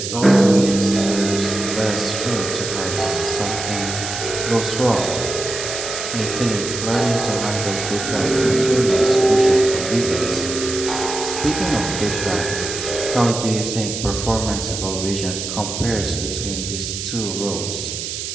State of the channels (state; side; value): noise; right; hiss, 5 dB below the sound